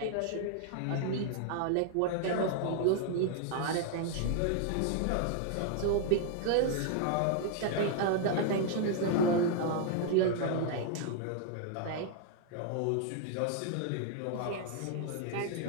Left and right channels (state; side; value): different; both; correlation 0.00